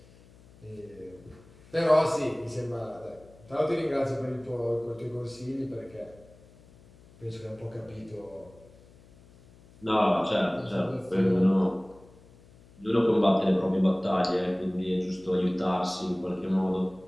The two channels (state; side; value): noise; left; hum, 25 dB below the sound